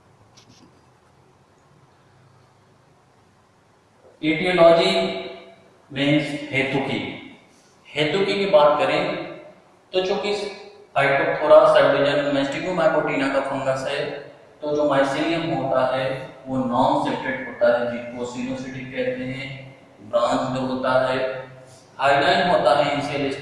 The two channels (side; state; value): both; identical; correlation 1.00